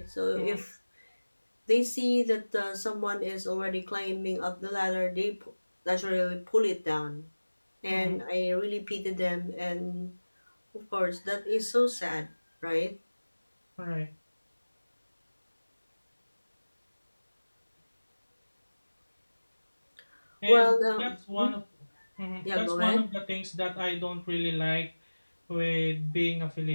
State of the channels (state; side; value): inverted; both; correlation -1.00